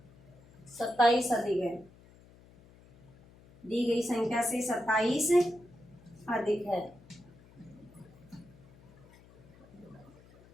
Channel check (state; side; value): noise; left; hum, 24 dB below the sound